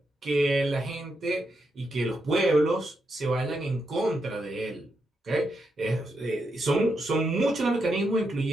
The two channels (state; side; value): normal; both; correlation 0.83